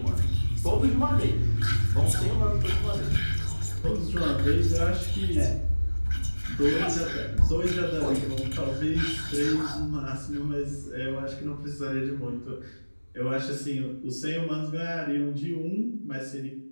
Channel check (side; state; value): both; inverted; correlation -1.00